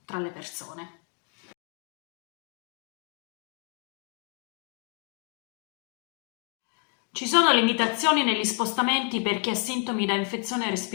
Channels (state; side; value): quieter; right; 33.5 dB